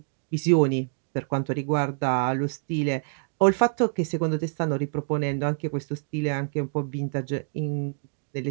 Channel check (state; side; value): silent; left; digital silence